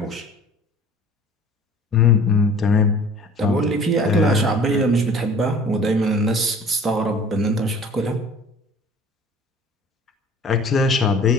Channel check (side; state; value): both; normal; correlation 0.47